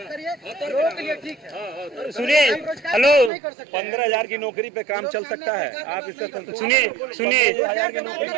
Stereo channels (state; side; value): drops out; left; at 3.3 s